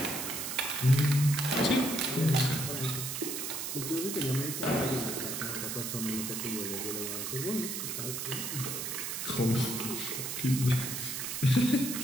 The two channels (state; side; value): noise; right; hiss, 4 dB below the sound